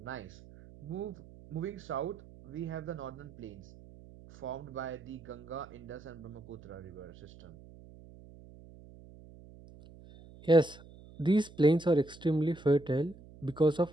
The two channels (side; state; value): right; noise; hum, 20 dB below the sound